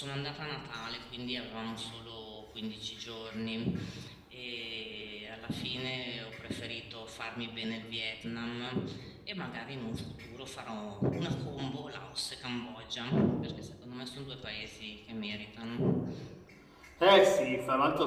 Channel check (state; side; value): identical; both; correlation 1.00